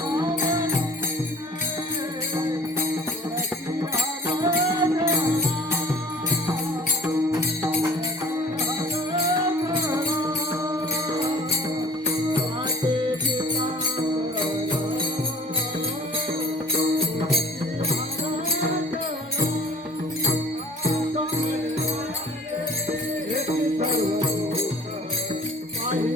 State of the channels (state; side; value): normal; both; correlation 0.49